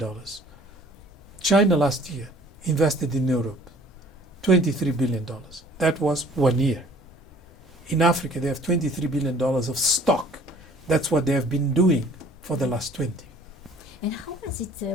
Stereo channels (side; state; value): both; normal; correlation 0.53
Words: China last year invested in Europe $23 billion. That was 1 year. In Africa, they have $23 billion of stock. That's what they have been doing for the last 20. And how has it,